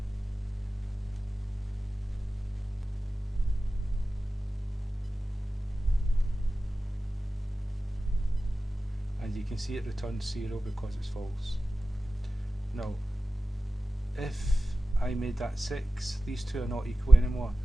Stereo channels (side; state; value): both; normal; correlation 0.95